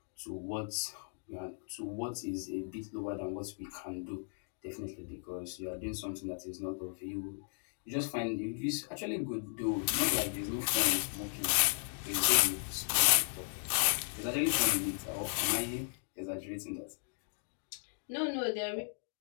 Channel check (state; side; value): silent; right; 54 dB below the other